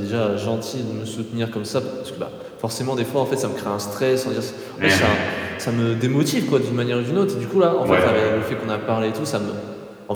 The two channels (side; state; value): both; identical; correlation 1.00